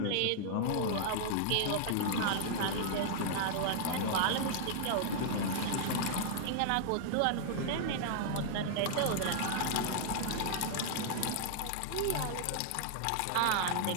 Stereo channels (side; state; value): both; different; correlation -0.01